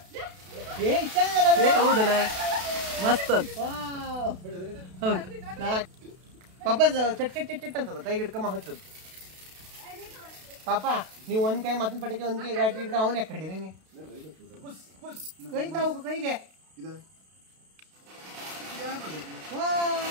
ಹೌದಲ್ಲ ಮಸ್ತ್ ಹೌದು ಪಾಪ ಚಟ್ ಚಟ್ ಚಟ್ ಚಟ್ ಅಂತದ ಕೈಗೆ ಹಿಡ್ಕಮ್ಮ ಹಚ್ಚದು ಪಾಪ ನೀವು ಒಂದ್ ಕೈ ಮತ್ತೊಂದು ಪಟಕೆ ಒಂದ್ ಕೈ ಗಾಡಿ ಹಿಡ್ಕ ಅವನ್ ಯಾಕೆ ಕಡೀರಿ ನೀ ಕೈ ತಾವು ಕೈಗೆ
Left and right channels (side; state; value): left; late; 32 ms